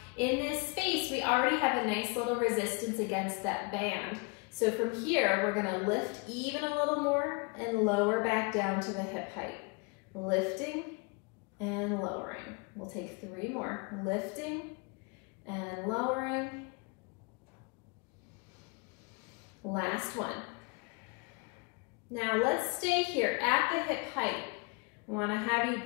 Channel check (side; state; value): right; quieter; 30.6 dB